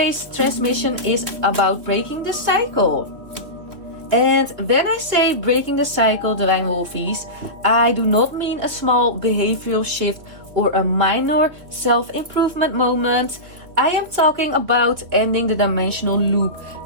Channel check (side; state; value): left; late; 3.0 ms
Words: transmission is about breaking the cycle. And when I say breaking the cycle, Divine Wolfeys, I do not mean a small behavioral shift or a minor self-improvement moment. I am talking about ending the dimensional loop